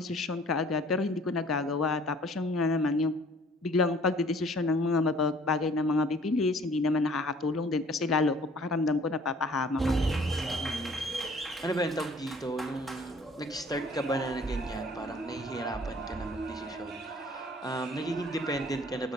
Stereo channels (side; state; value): both; normal; correlation 0.54